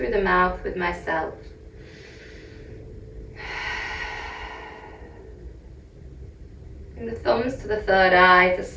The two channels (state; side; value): identical; both; correlation 1.00